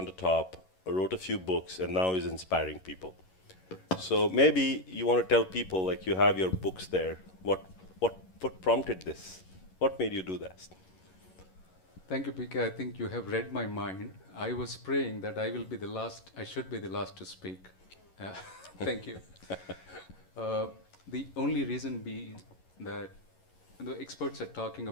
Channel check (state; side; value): late; right; 11 ms